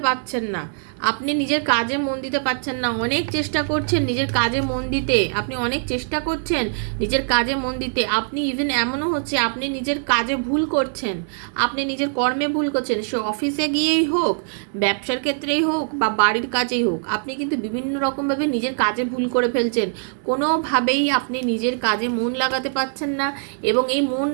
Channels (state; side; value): silent; left; digital silence